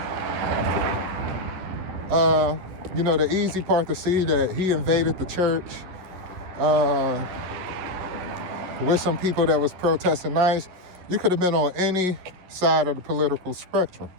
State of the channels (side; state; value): left; late; 11 ms